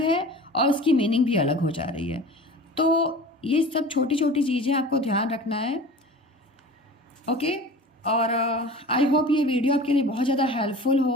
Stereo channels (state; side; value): normal; both; correlation 0.38